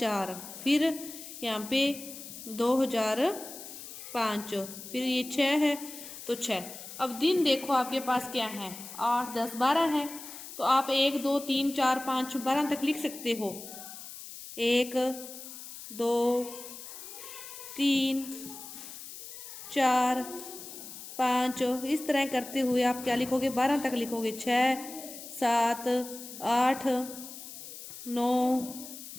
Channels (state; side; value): noise; left; hiss, 12 dB below the sound